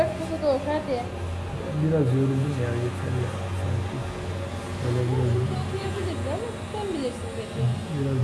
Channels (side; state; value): both; identical; correlation 1.00